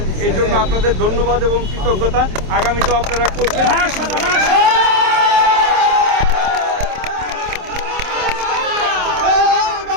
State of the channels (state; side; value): late; left; 27 ms